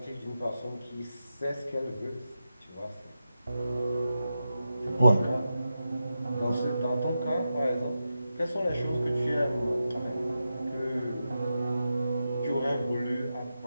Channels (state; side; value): inverted; both; correlation -0.90